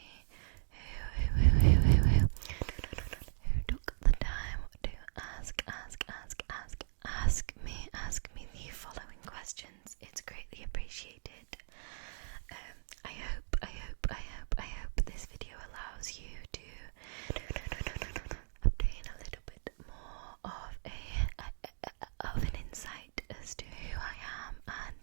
who took the time to ask me the following questions. It's greatly appreciated. I hope this video allows you to obtain a little bit more of an insight as to who I am and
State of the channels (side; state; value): left; silent; digital silence